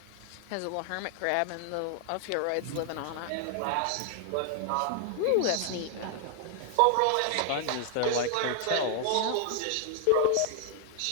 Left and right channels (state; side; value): different; both; correlation 0.00